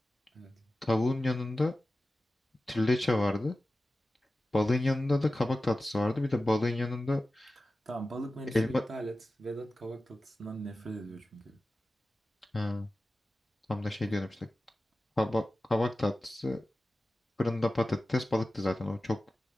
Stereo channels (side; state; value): both; normal; correlation 0.95